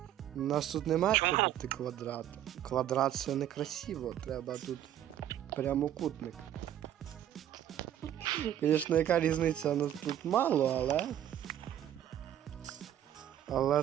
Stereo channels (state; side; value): quieter; left; 11.3 dB